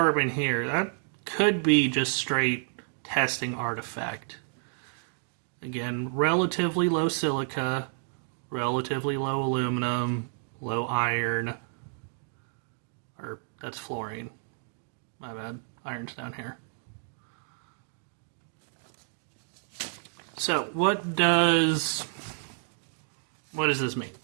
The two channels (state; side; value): silent; left; 58 dB below the other